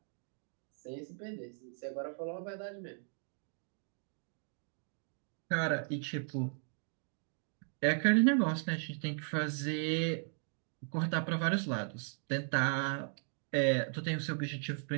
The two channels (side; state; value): left; silent; 53 dB below the other